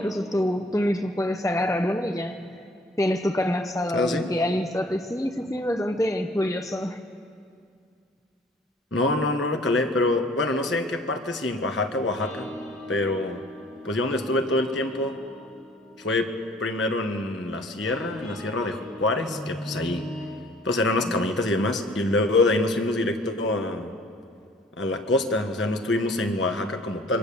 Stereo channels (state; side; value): normal; both; correlation 0.55